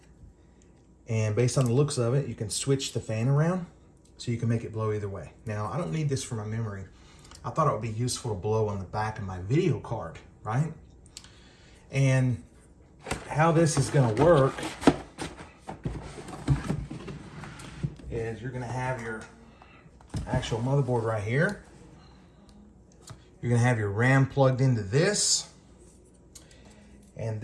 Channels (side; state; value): both; identical; correlation 1.00